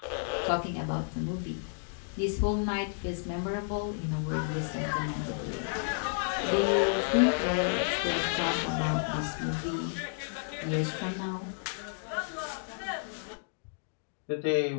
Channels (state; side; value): silent; right; digital silence